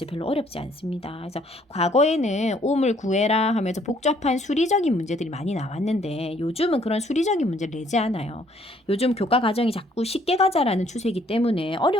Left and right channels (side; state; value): both; normal; correlation 0.64